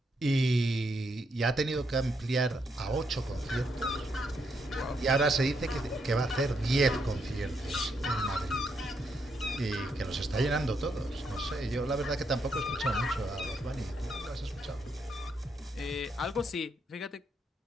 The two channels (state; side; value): normal; both; correlation 0.78